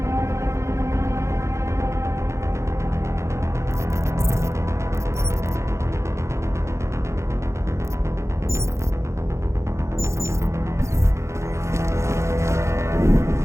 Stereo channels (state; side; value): late; left; 0.14 ms